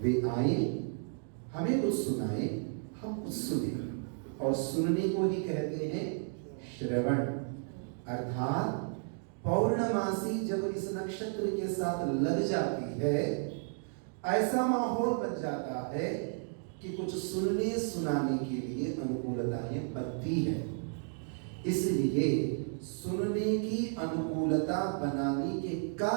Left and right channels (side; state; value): left; silent; 56 dB below the other